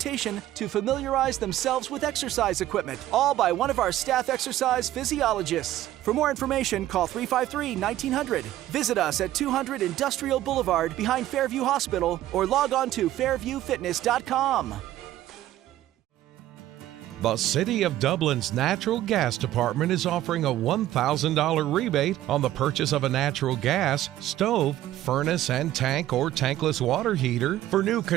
to familiarize themselves with exercise equipment, all by one of our staff exercise physiologists. For more information, call 353-1900. Visit us at 200 Industrial Boulevard behind Fairview Hospital or log on to fairviewfitness.com. The City of Dublin's Natural Gas Department is offering a $1,000 rebate on the purchase of a natural gas, stove, furnace and tank or tankless water heater for new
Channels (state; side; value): quieter; left; 13.9 dB